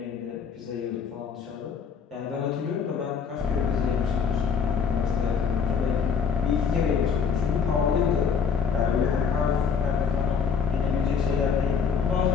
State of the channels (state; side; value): quieter; right; 6.2 dB